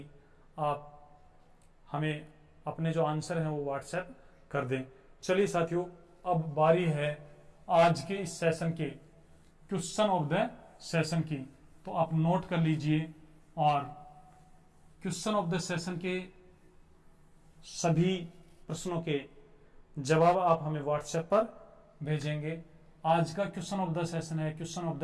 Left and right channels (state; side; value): identical; both; correlation 1.00